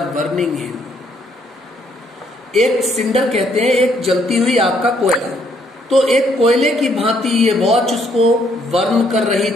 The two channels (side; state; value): both; normal; correlation 0.69